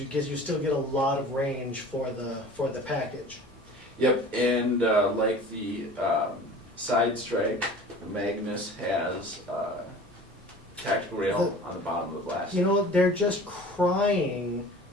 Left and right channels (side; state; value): both; normal; correlation 0.42